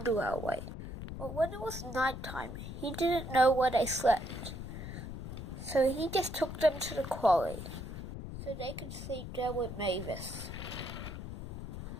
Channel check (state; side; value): noise; left; rumble, 8 dB below the sound